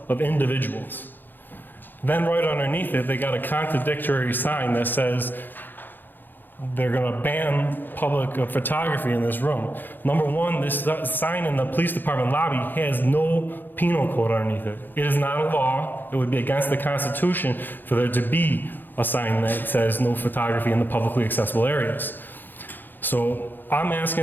of individuals." Then right underneath it, they got a contradictory sign that says they're going to ban public photography in this room. Number one, this sign in the police department lobby has no penal code underneath it. It is not a law. It would be against the Constitution for there to be a sign that says no photography in the publicly accessible areas. So I'm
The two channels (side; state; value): right; late; 0.091 ms